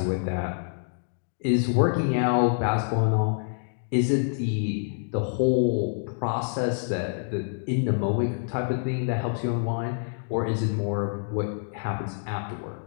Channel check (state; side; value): silent; right; digital silence